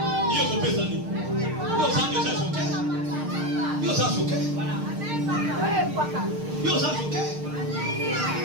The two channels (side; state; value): left; late; 6.5 ms